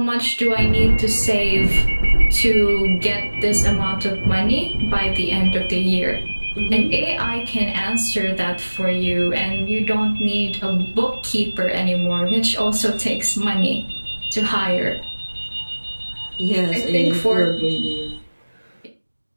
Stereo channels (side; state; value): both; inverted; correlation -1.00